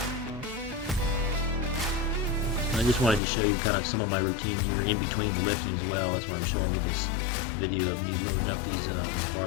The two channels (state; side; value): drops out; right; at 3.2 s